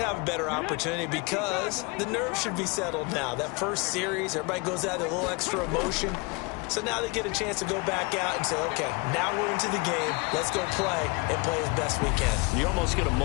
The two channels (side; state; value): right; quieter; 27.8 dB